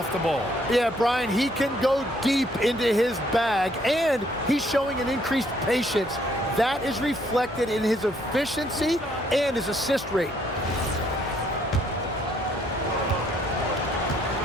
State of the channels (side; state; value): both; normal; correlation 0.67